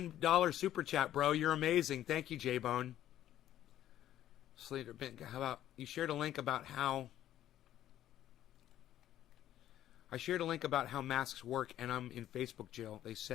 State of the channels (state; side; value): quieter; right; 12.3 dB